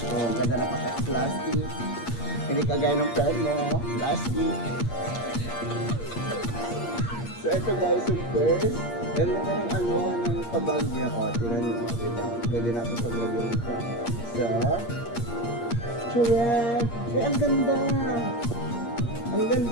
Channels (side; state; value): right; late; 8.5 ms